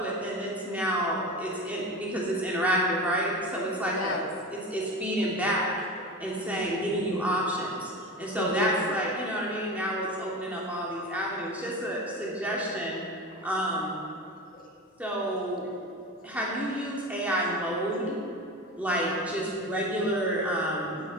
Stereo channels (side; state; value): both; normal; correlation 0.28